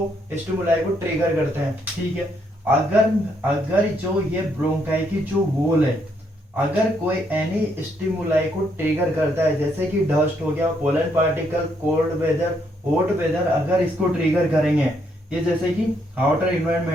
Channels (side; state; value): both; normal; correlation 0.73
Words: स्टिमुलाई को ट्रिगर करते हैं, ठीक है। अगर जो ये ब्रोंकाई की जो वॉल है, अगर कोई एनी स्टिमुलाई को ट्रिगर करता है, जैसे कि डस्ट हो गया, pollen particle, cold weather, hot weather, अगर इसको ट्रिगर करेंगे, ये जैसे कि आउटर